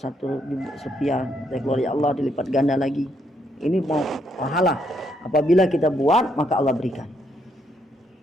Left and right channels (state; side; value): normal; both; correlation 0.74